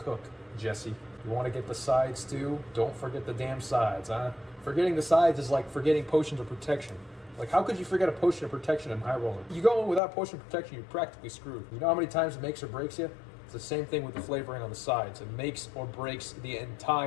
Jesse. You want to get the sides too. Don't forget the damn sides, huh? Forgetting the sides is like forgetting potions of protection. Like, how could you forget a potion of protection in high roller? You go in without potion of protection, you're practically screwed. You know how many times it makes or breaks you? It's the same thing with the flavoring on the sides. It makes or breaks the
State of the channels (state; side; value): drops out; right; at 10.0 s